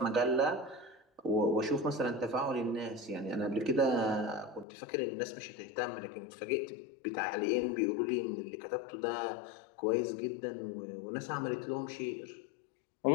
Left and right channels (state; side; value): drops out; right; at 4.7 s